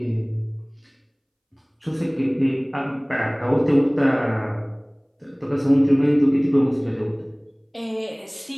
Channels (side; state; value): both; identical; correlation 1.00